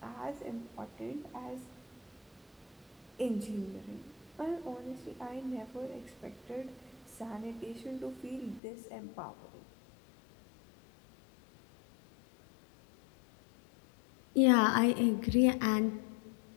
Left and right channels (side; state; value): right; drops out; at 8.6 s